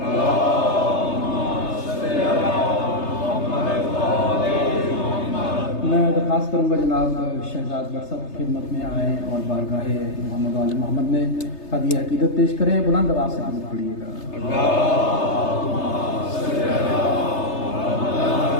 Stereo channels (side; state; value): right; late; 3.3 ms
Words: میں درخواست کروں گا جناب شہزاد بٹ صاحب خدمت میں آئیں اور بارگاہ محمد وال محمد میں ہدیہ عقیدت پیش کریں، بلند آواز سے درود پڑھیے گا۔